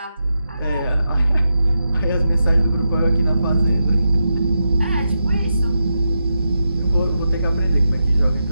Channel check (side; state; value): both; inverted; correlation -0.87